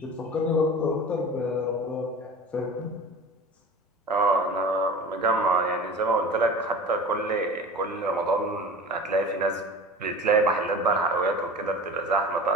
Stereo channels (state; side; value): normal; both; correlation 0.37